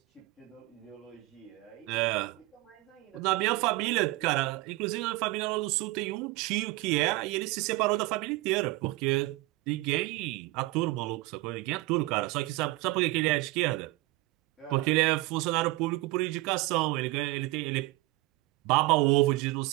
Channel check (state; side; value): quieter; left; 20.6 dB